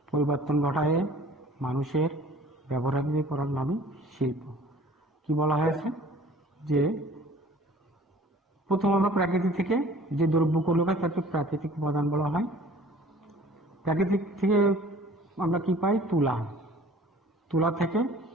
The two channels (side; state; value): both; normal; correlation 0.50